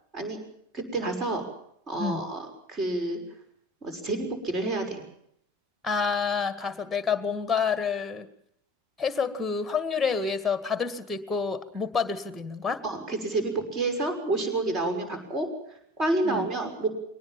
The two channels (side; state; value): both; normal; correlation 0.45